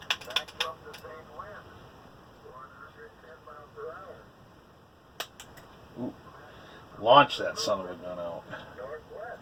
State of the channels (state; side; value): identical; both; correlation 1.00